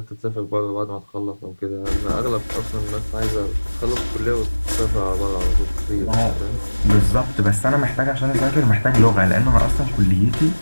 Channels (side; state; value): both; inverted; correlation -1.00